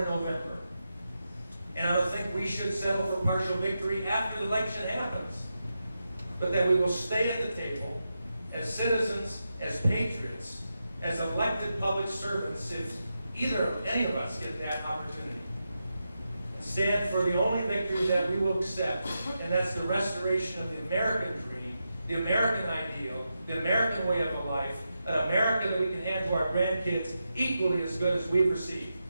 November. And I don't think we should settle for partial victory after the election happens. But that we will stay at the table as citizens, as patriots, as elected public servants, if any of us get that opportunity. And stand for the only victory that we will accept, and that's the restoration of the American dream, the American ideal, the American way of life, an America that we can hand to our grandkids equally as good as we've received.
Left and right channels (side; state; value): both; inverted; correlation -0.88